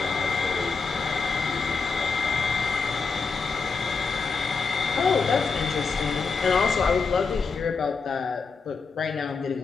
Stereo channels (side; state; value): right; quieter; 4.8 dB